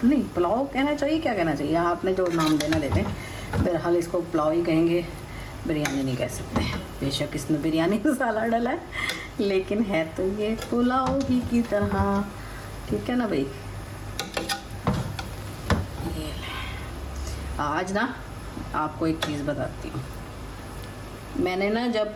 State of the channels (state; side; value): identical; both; correlation 1.00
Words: नहीं, पुलाव कहना चाहिए, क्या कहना चाहिए, आपने जो नाम देना देते। बहरहाल इसको पुलाव ही कहेंगे, बिरयानी नहीं कह सकते। बेशक इसमें बिरयानी मसाला डाला है, लेकिन है तो ये पुलाव ही की तरह। ठीक है ना भाई। ये आज ना आपको एक चीज़ बताती हूँ। मैंने ना जब